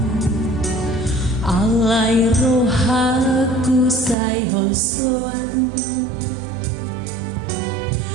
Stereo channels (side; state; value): left; drops out; at 4.2 s